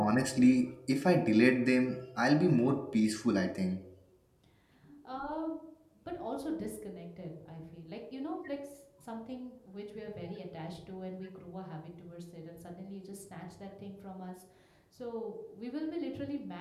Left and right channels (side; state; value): both; identical; correlation 1.00